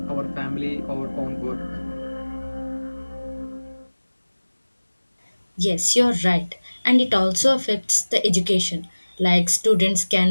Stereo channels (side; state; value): both; inverted; correlation -1.00